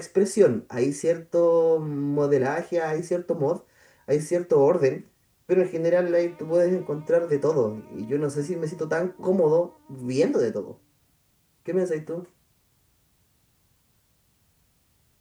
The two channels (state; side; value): identical; both; correlation 1.00